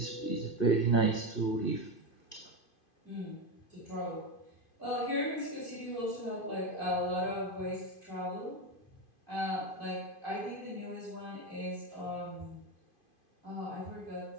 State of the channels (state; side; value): late; right; 2.5 ms